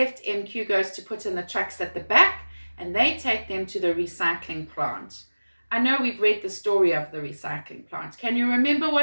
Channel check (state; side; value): inverted; both; correlation -1.00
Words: MQ goes to put in the trucks at the back and they take them to the recycling plant. I know we've read the story of the recycling plant. Can you remember